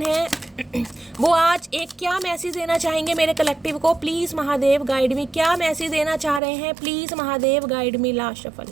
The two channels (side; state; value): left; drops out; at 6.4 s